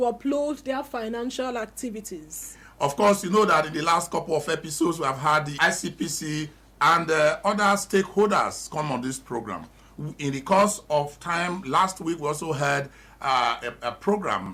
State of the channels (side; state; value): both; identical; correlation 1.00